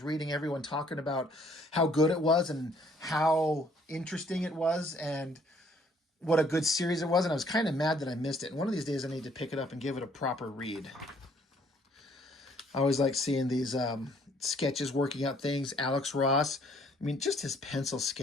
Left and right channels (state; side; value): normal; both; correlation 0.62